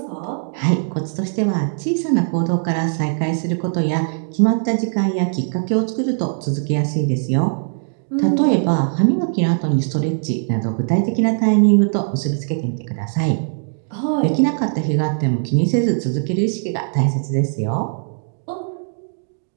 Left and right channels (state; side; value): silent; left; digital silence